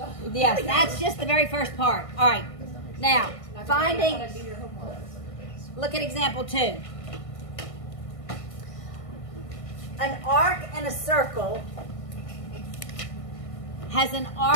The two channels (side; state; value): right; late; 1.5 ms